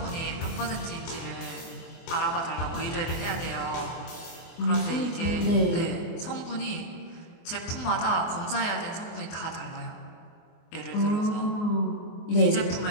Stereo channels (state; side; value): late; right; 24 ms